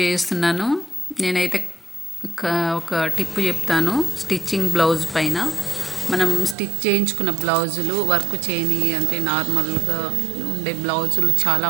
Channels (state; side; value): drops out; left; at 6.6 s